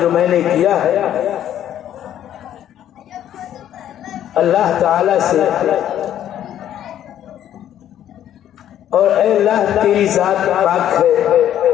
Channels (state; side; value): quieter; right; 11.1 dB